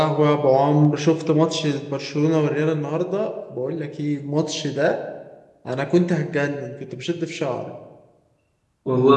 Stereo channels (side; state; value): both; identical; correlation 1.00